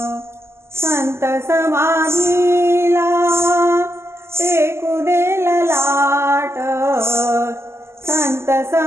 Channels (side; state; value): left; late; 0.12 ms